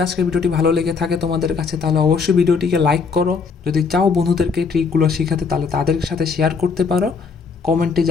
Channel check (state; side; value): quieter; right; 5.2 dB